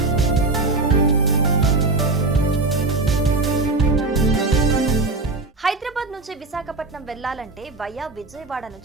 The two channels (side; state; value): left; quieter; 3.4 dB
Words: హైదరాబాద్ నుంచి విశాఖపట్నం వెళ్లాలంటే వయా విజయవాడ